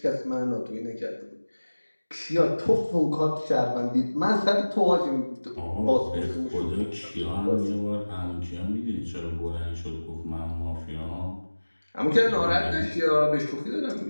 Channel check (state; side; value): inverted; both; correlation -1.00